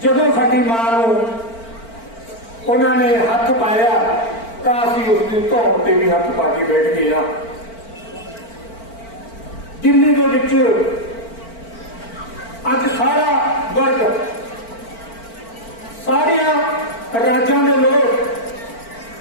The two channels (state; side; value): late; right; 4.4 ms